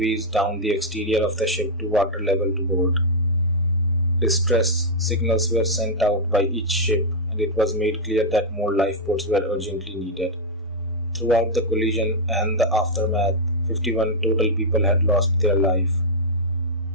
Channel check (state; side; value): normal; both; correlation -0.05